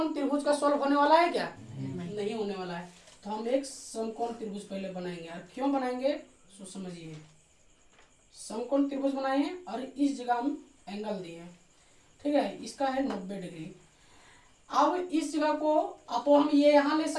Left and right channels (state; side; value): identical; both; correlation 1.00